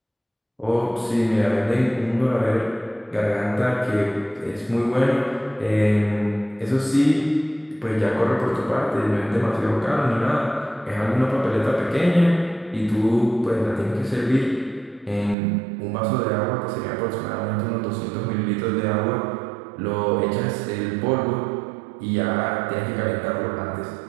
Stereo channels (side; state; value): left; drops out; at 15.4 s